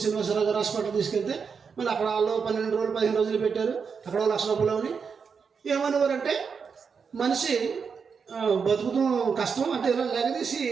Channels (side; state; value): left; quieter; 5.9 dB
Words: శ్రీనివాసరావు గారు హాస్పిటల్ తీసుకెళ్తే మళ్ళీ అక్కడ వాళ్ళు 12 రోజులు 15 రోజులు పెట్టారు. అక్కడ ₹1,00,000 ఏమనేవారంటే మనిషి బతుకుతాం కష్టం అంటే ఇలా లేగదీసి